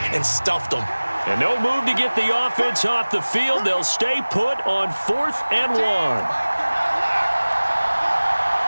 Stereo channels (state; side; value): inverted; both; correlation -1.00